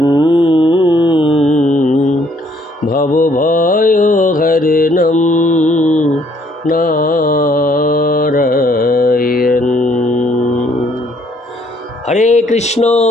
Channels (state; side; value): normal; both; correlation 0.65